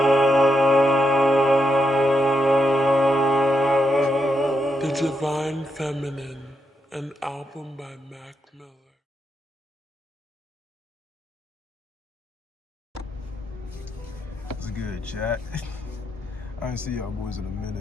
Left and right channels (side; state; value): both; normal; correlation 0.83